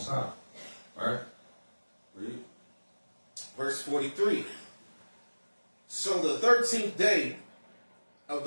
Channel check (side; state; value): both; inverted; correlation -1.00